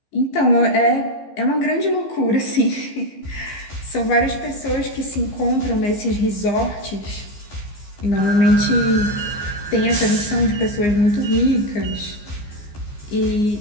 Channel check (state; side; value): late; right; 14 ms